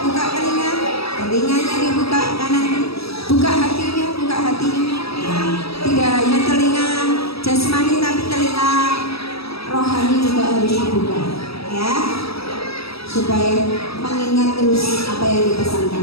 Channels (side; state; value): right; late; 0.77 ms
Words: buka telinganya dibuka kanan, buka hatinya. Tidak hanya telinga jasmani tapi telinga rohani juga harus dibuka, ya, supaya mengingat terus apa yang